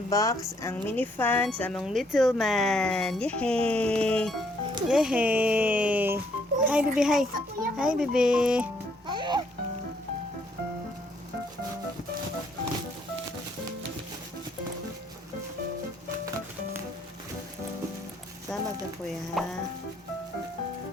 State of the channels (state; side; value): normal; both; correlation 0.69